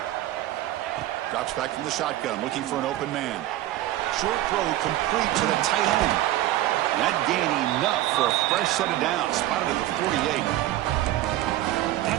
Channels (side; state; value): left; quieter; 14.8 dB